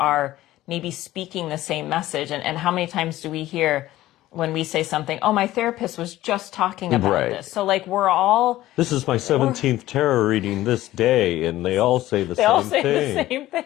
maybe speaking the same message. And how many times do we hear when we say something, oh, my therapist was just talking about this. So, like, we're all... This is my 17th tarot reading this day, and they all say the same thing. They all say the same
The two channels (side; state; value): right; quieter; 15.5 dB